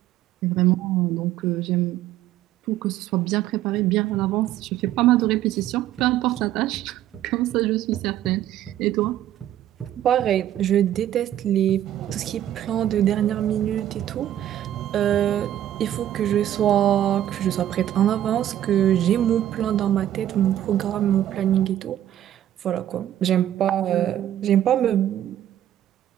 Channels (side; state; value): left; quieter; 11.9 dB